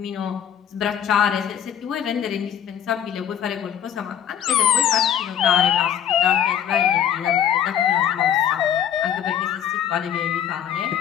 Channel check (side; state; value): right; quieter; 9.3 dB